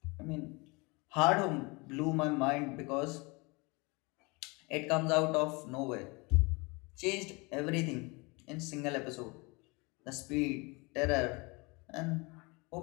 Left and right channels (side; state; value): right; quieter; 27.3 dB